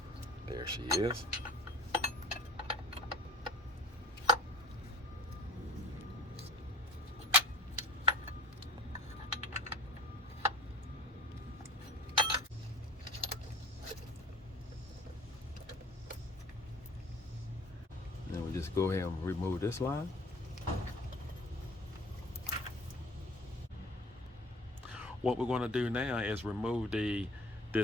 There she is. Then we just go ahead and remove this line. What we're going to do now is remove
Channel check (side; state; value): both; normal; correlation 0.44